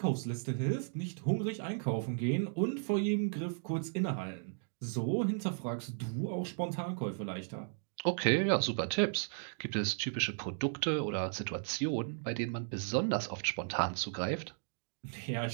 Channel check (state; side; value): silent; left; digital silence